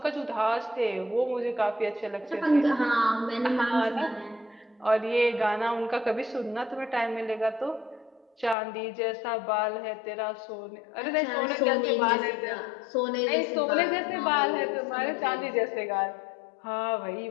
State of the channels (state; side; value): drops out; right; at 8.6 s